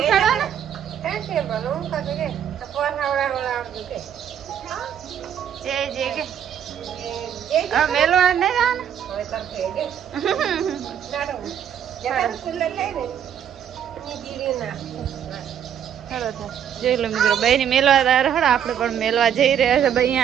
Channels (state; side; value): quieter; left; 9.1 dB